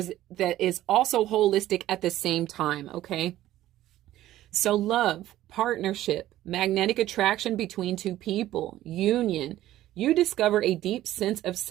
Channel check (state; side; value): quieter; left; 14.1 dB